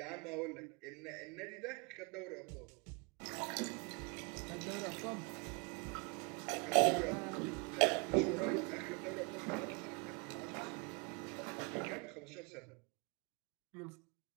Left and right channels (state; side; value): quieter; left; 32.2 dB